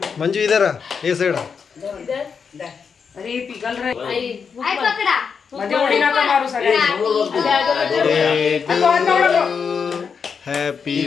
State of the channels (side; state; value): right; quieter; 6.1 dB